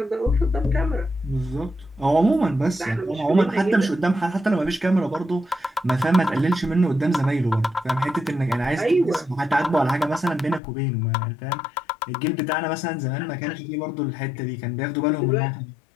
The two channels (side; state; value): right; drops out; at 10.6 s